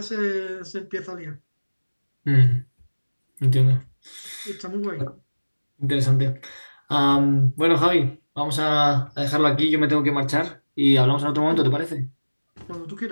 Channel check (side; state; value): both; inverted; correlation -1.00